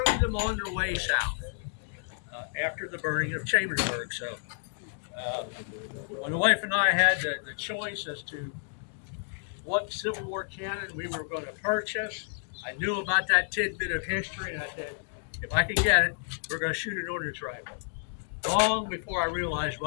them on their way south after the burning of Chambersburg. So when the wife and I had the choice as to what Civil War cannon we were going to purchase, I knew about that tidbit of history, and I said, if I can get it, we're going to shoot an ordnance rifle. Long before I realized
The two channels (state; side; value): silent; right; digital silence